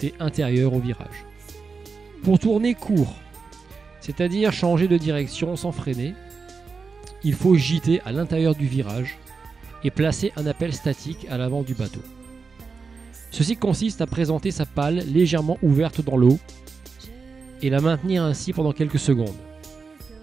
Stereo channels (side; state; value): left; quieter; 4.8 dB